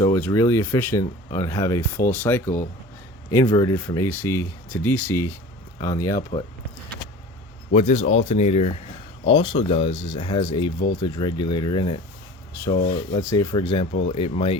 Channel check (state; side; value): normal; both; correlation 0.39